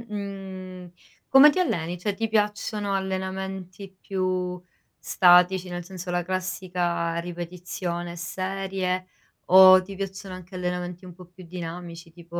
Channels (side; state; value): both; identical; correlation 1.00